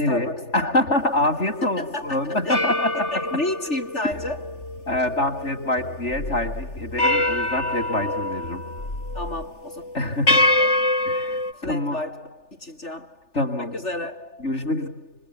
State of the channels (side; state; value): right; late; 3.4 ms